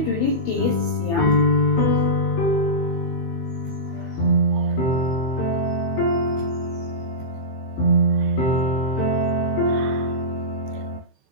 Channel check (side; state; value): right; late; 15 ms